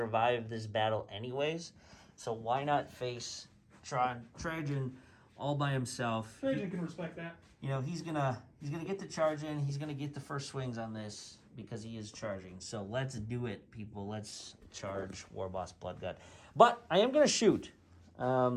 this battle anyways, so why not face Trajan all by himself? Trajan can respect that. You know, he's gonna get the charge in. He's gonna get the first swings on this. because he is charging. So let's do it, people. Let's charge Warboss Bloodgut. But I am going to shoot,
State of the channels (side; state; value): both; identical; correlation 1.00